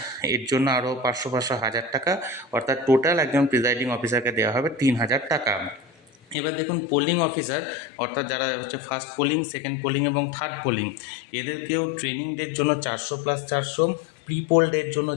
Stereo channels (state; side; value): drops out; right; at 6.4 s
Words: এর জন্য আরও 500 1000 টাকা, অর্থাৎ টোটাল একজন প্রিজাইডিং অফিসারকে দেওয়া হবে 3000 টাকা। এবার দেখুন, পোলিং অফিসার অর্থাৎ যারা হচ্ছে ফার্স্ট পোলিং, সেকেন্ড পোলিং এবং থার্ড পোলিং, এদেরকেও ট্রেনিং ডের জন্য 400 + 400, প্রি পোল ডের জন্য